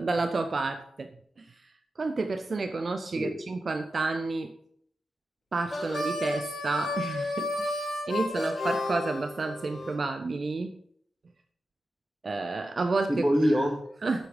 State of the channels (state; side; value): normal; both; correlation 0.91